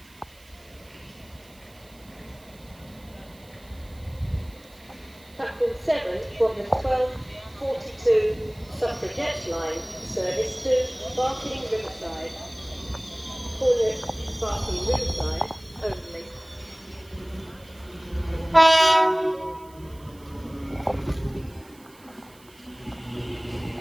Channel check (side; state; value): right; noise; hiss, 26 dB below the sound